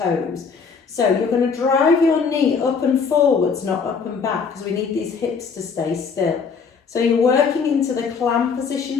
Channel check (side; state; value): right; quieter; 5.6 dB